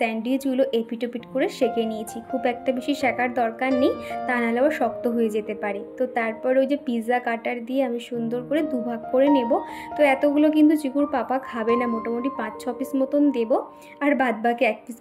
এপিটোপিট করে সেঁকে নিয়েছি। খুব একটা বেশি সেঁকার দরকার নেই, তা নাহলে আবার শক্ত হয়ে যেতে পারে। তো তারপর ওই যে পিৎজা কাটার দিয়ে আমি সুন্দর করে দুভাগ করে নেব। তো এতগুলো কিন্তু চিকুর পাপা খাবে না, মোটামুটি 5-6 পিস মতন দেবো, আর বাদবাকি 1 পিস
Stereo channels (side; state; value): both; identical; correlation 1.00